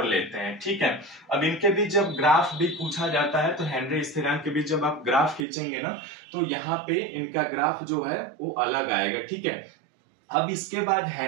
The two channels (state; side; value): drops out; left; at 5.5 s